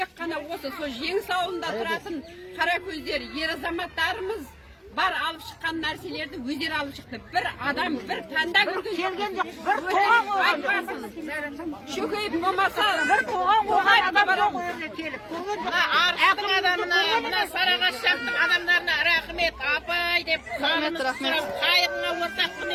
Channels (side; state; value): both; identical; correlation 1.00